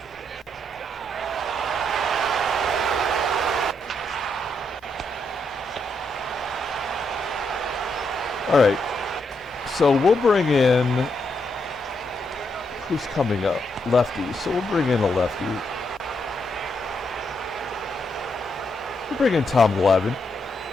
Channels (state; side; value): normal; both; correlation 0.79